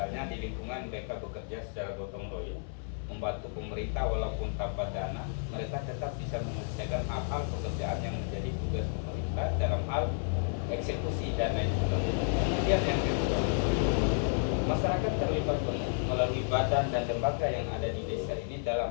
di lingkungan mereka bekerja secara gotong royong, membantu pemerintah walaupun tanpa dana, mereka tetap bisa menyelesaikan hal-hal pekerjaan yang menjadi tugas pemerintah dalam hal eksekusi dan lain sebagainya. Kemudian yang kedua, masyarakat terlibat melalui badan dan lembaga yang ada di desa ini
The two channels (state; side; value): silent; right; 57 dB below the other